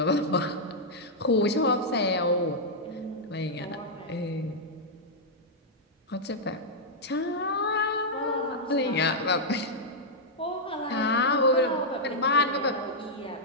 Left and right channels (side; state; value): both; normal; correlation -0.06